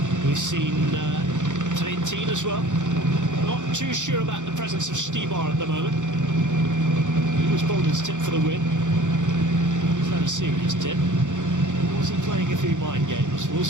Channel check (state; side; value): late; left; 0.85 ms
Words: We've seen Trentin as well. Not too sure about the presence of Stibar at the moment. He was Bolden's tip for the win. Is that a serious tip? Or was he playing a few mind games? We'll